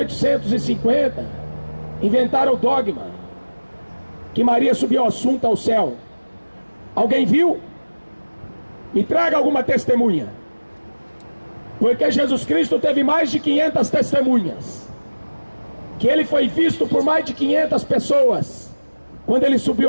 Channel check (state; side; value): inverted; both; correlation -1.00